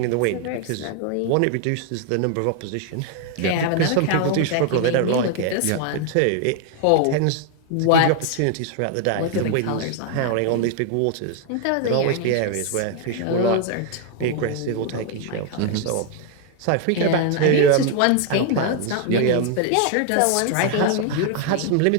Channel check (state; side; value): different; both; correlation 0.00